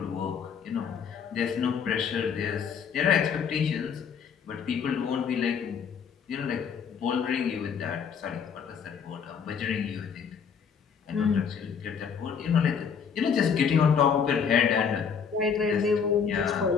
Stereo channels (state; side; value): quieter; right; 6.8 dB